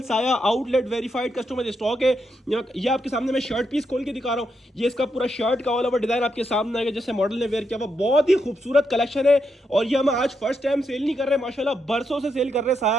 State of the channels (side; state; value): both; normal; correlation 0.82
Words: साया आउटलेट वेरीफाइड कस्टमर जो स्टॉक है। ये आपके सामने मैं शर्ट पीस खोल के दिखा रहा हूं। ये इसका पूरा शर्ट का ऑल ओवर डिजाइन आपके सामने आएगा, जैसे मॉडल ने वेयर किया हुआ। बहुत ही खूबसूरत कलेक्शन है और ये हम आज फर्स्ट टाइम सेल नहीं कर रहे, माशाल्लाह बरसों से सेल कर रहे हैं